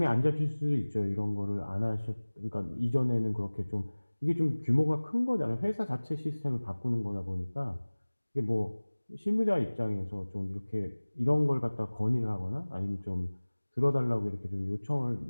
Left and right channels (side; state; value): both; inverted; correlation -1.00